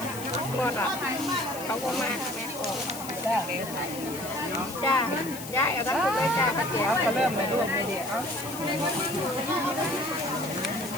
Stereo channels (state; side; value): noise; left; hiss, 11 dB below the sound